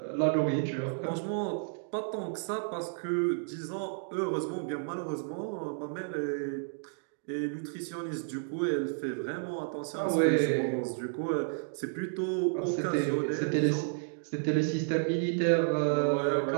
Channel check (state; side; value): silent; left; digital silence